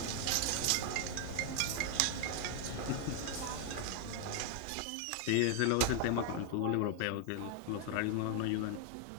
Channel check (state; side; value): different; both; correlation 0.00